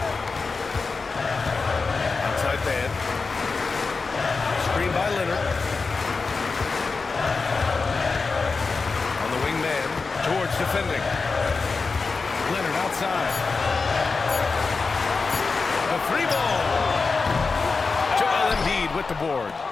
Outside man. Screen by Leonard. On the wing man. George defending. Leonard outside. The 3-ball. Joel Embiid with the board.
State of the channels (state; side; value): quieter; right; 4.4 dB